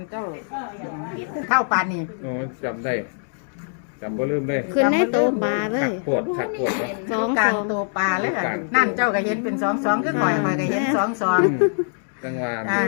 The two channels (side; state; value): right; silent; digital silence